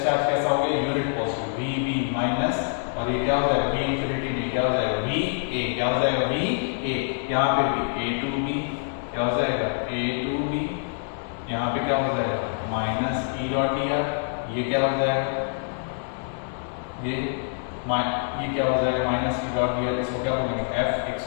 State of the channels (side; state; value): right; silent; 61 dB below the other